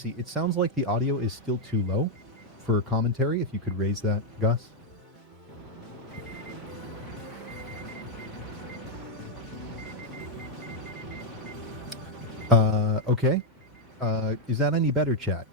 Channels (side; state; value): both; normal; correlation 0.00